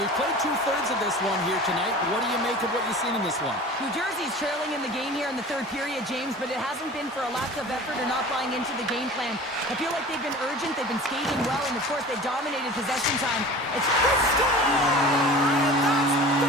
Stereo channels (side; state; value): both; normal; correlation 0.39